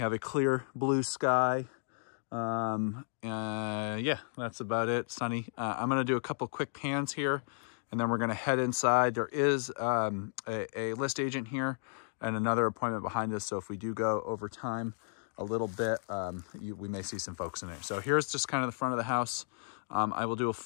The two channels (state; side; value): silent; right; digital silence